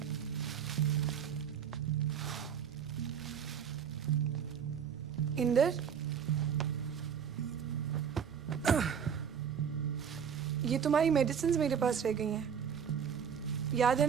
इंदर, ये तुम्हारी मेडिसिन मेरे पास रह गई हैं। याद है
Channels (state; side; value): quieter; left; 7.7 dB